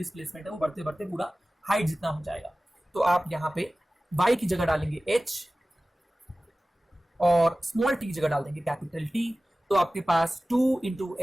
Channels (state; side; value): normal; both; correlation 0.97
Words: है, वो बढ़ते बढ़ते पूरा हाइट जितना हो जाएगा। तो आप यहाँ पे y की जगह डालेंगे h और स्मॉल टी की जगह डाल देंगे कैपिटल T, तो आपके पास 2 इंटू